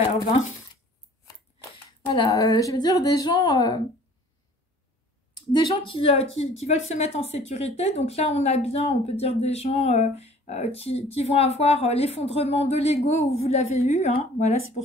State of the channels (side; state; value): both; normal; correlation 0.51